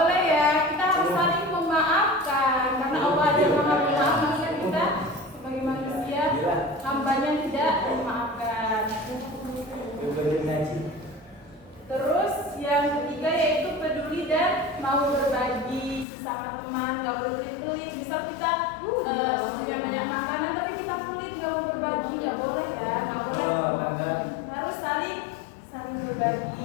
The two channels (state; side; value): drops out; right; at 16.1 s